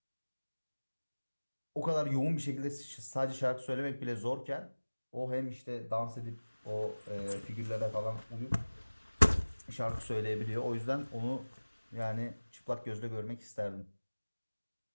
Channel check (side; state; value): both; inverted; correlation -1.00